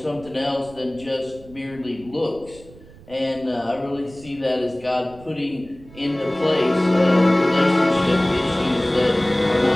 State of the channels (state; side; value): noise; right; rumble, 21 dB below the sound